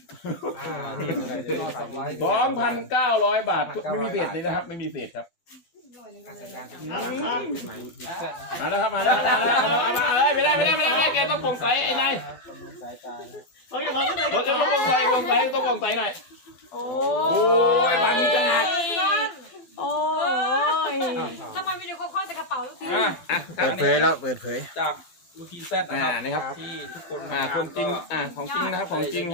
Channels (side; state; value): right; late; 12 ms